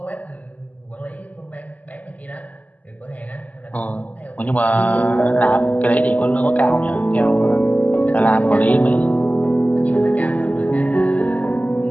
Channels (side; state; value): right; late; 0.076 ms